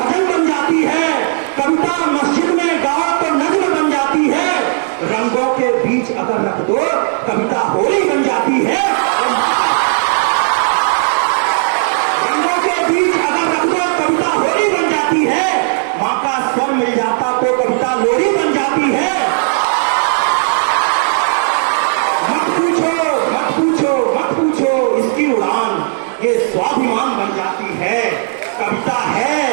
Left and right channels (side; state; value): left; silent; digital silence